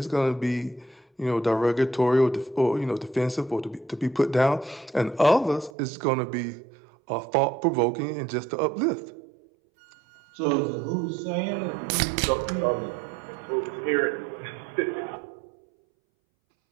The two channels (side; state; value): left; drops out; at 5.7 s